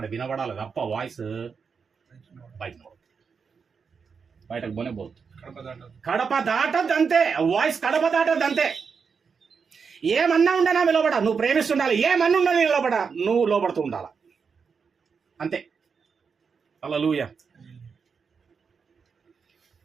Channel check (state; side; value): quieter; left; 5.8 dB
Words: వినబడాలి తప్ప వాయిస్ బయటకు పోనే పోదు. కడప దాటద్దంతే. వాయిస్ కడప దాటద్దంతే. ఏమన్నా ఉండనా లోబడ, నువ్వు ప్రేమిస్తుండాలి. ఏమన్నా ఉండని లోబడ, నువ్వు లోబడుతూ ఉండాలి. అంతే. హల్లెలూయా.